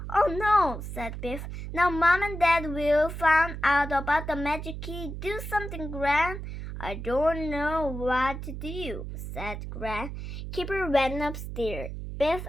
Oh no, said Biff. Now Mom and Dad will find out about the magic key. Do something, Gran. I don't know what to do, said Gran. Kipper went upstairs. Biff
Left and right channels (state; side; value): noise; right; hum, 7 dB below the sound